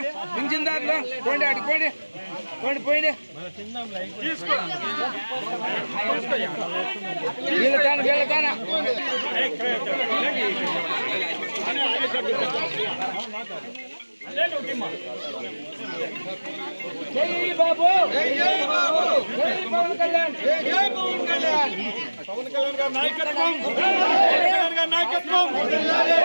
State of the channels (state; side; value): inverted; both; correlation -1.00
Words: పింఛన్దారులు పోండి, అడిగి పోండి, పోండి పోయింది. వీళ్ళ జై బాబు, జై జై బాబు, జై పవన్ కళ్యాణ్, జై జై పవన్ కళ్యాణ్, పవన్ కళ్యాణ్ గారి నాయకత్వం, పవన్ కళ్యాణ్ గారి నాయకత్వం, పవన్ కళ్యాణ్